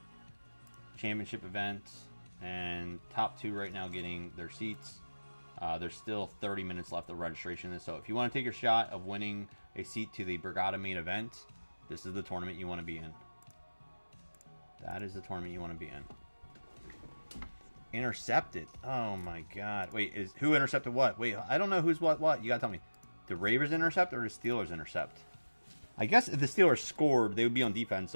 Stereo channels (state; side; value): inverted; both; correlation -1.00